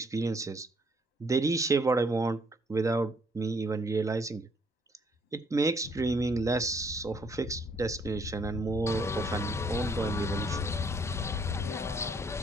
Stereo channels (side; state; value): both; normal; correlation 0.66